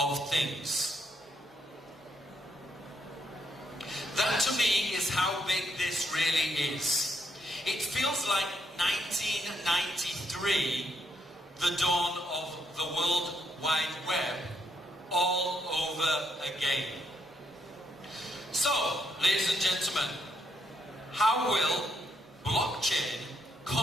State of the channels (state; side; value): normal; both; correlation 0.76